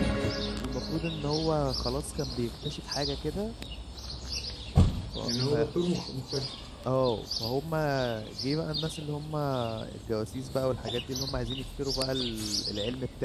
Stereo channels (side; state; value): both; identical; correlation 1.00